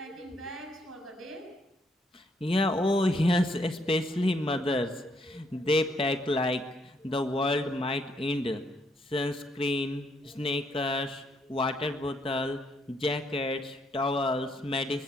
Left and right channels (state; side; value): normal; both; correlation 0.72